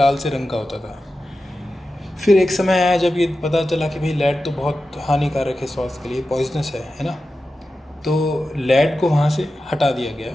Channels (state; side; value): normal; both; correlation 0.92